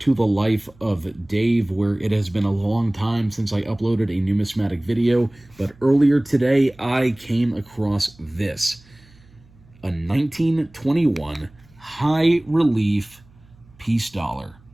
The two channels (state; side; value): noise; right; hum, 28 dB below the sound